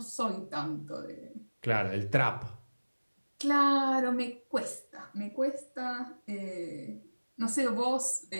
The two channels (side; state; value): both; inverted; correlation -1.00